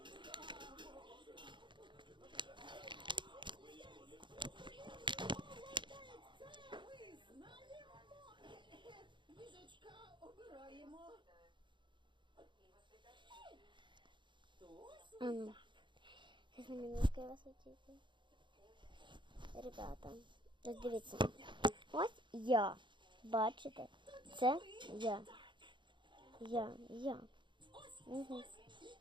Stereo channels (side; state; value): left; late; 0.23 ms